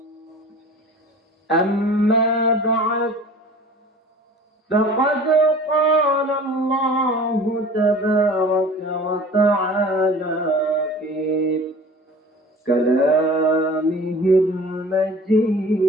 أما بعد، فقد قال الله تبارك وتعالى في كلامه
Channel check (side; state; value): both; normal; correlation 0.43